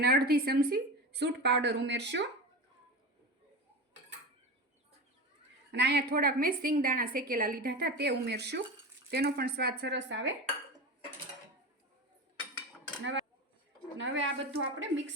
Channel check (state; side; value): normal; both; correlation 0.25